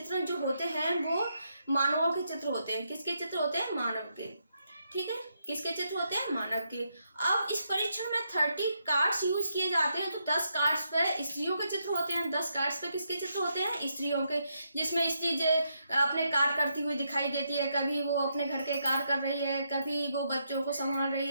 जो होते हैं वो मानवों के चित्र होते हैं। किसके चित्र होते हैं? मानव के। ठीक है, किसके चित्र होते हैं? मानव के। अब इस परीक्षण में 30 कार्ड्स यूज किए जाते हैं। तो 10 कार्ड्स पे स्त्रियों के चित्र होते हैं, 10 कार्ड्स पे किसके चित्र होते हैं? स्त्रियों के। जिसमें स्त्री जो अपने कार्य करती हुई दिखाई देती है, कभी वो अपने घर के कार्य कर रही है, कभी वो बच्चों को संभाल रही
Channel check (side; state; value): both; inverted; correlation -0.80